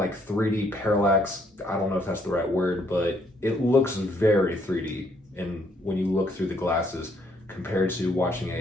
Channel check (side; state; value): both; normal; correlation 0.69